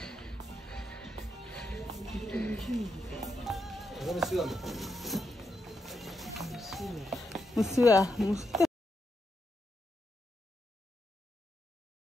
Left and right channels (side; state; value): both; normal; correlation 0.83